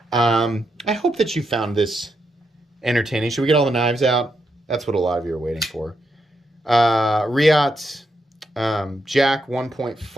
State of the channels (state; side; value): normal; both; correlation 0.82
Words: I hope that you found this entertaining. Should we get all the knives out? That's what a lot of you are waiting for. Riot Jack